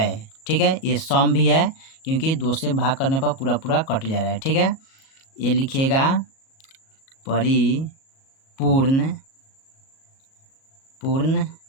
ठीक है। ये सम भी है क्योंकि 2 से भाग करने पर पूरा पूरा कट जा रहा है, ठीक है। ये लिखिएगा परिपूर्ण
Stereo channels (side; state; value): right; late; 37 ms